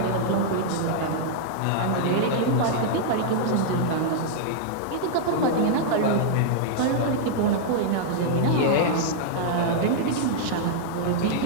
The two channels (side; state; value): both; different; correlation -0.01